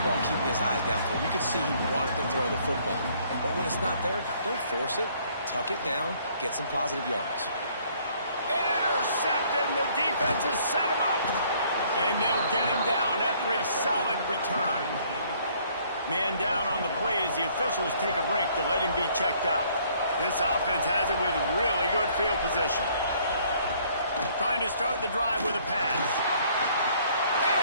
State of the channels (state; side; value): inverted; both; correlation -0.62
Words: all, keeping his eyes downfield. You could see he wanted to throw the football. But when it's not there, don't force it. Tuck it down. Get some positive yards. Intercepted, and the defense has set him up. And they'll get him down after a solid return. Man down on the play as the officials take a break to let him be checked out. This offense has it with really good field position. Trying to start the drive with a pass.